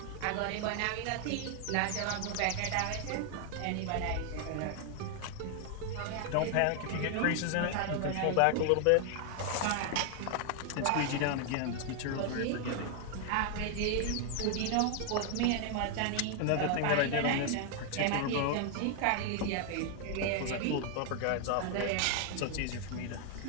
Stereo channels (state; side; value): different; both; correlation 0.00